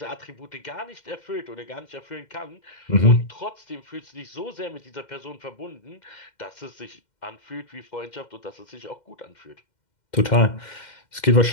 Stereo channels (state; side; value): late; right; 2.1 ms